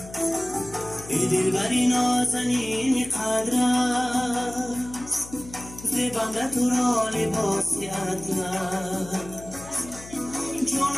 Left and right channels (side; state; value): left; noise; hum, 16 dB below the sound